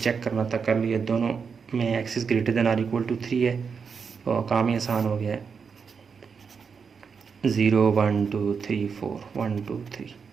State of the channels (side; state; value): left; quieter; 5.9 dB